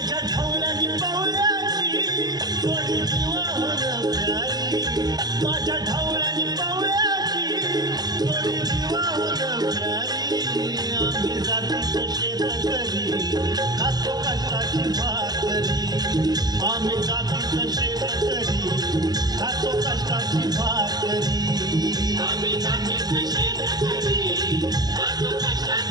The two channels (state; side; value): late; left; 0.19 ms